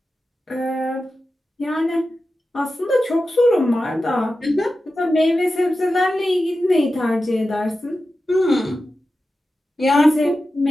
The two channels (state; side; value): normal; both; correlation 0.92